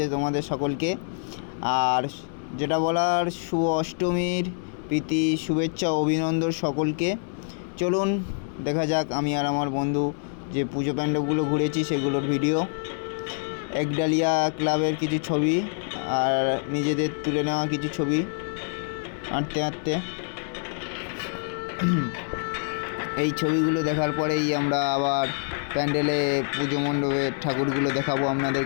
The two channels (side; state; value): right; silent; digital silence